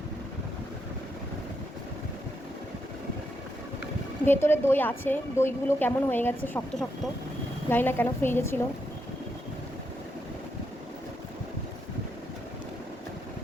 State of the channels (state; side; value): normal; both; correlation 0.81